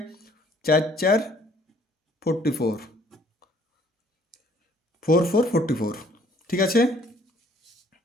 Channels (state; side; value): normal; both; correlation 0.61